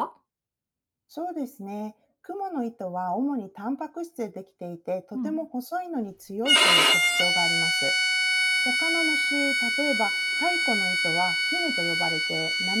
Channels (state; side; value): identical; both; correlation 1.00